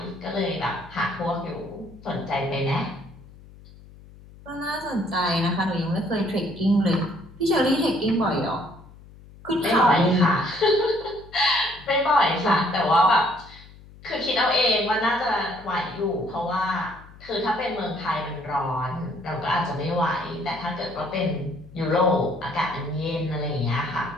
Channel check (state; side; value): noise; left; hum, 21 dB below the sound